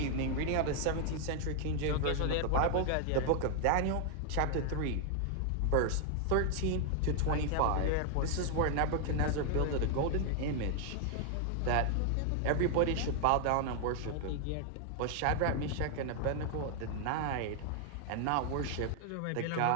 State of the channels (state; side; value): different; both; correlation 0.00